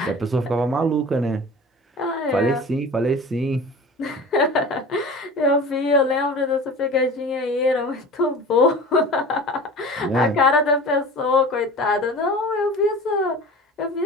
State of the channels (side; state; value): both; normal; correlation 0.37